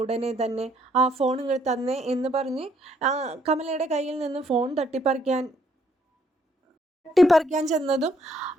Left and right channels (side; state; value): both; normal; correlation 0.69